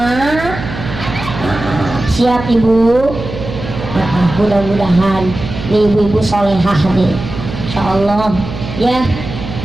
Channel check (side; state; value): right; noise; hum, 9 dB below the sound